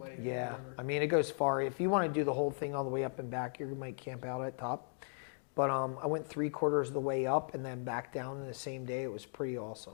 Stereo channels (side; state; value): right; silent; 53 dB below the other